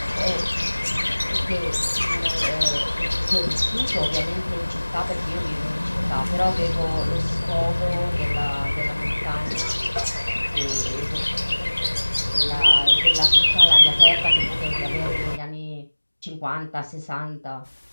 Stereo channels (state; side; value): inverted; both; correlation -1.00